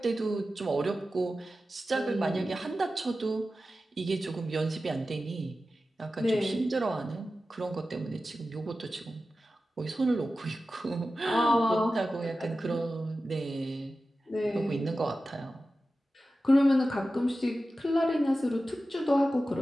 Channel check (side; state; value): both; normal; correlation 0.94